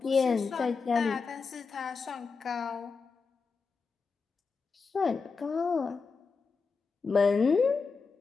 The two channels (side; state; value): right; quieter; 4.8 dB